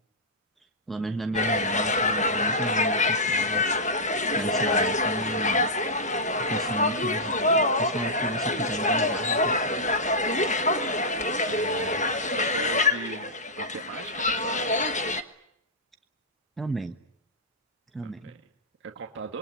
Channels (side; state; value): both; normal; correlation -0.12